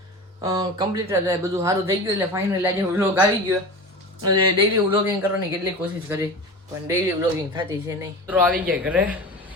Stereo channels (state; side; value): normal; both; correlation 0.31